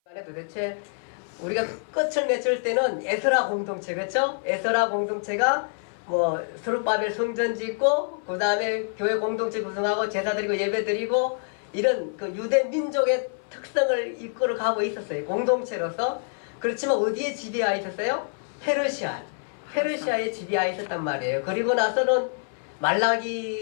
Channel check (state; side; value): silent; right; 57 dB below the other